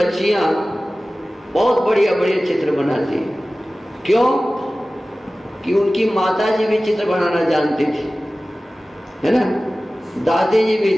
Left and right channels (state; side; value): normal; both; correlation 0.97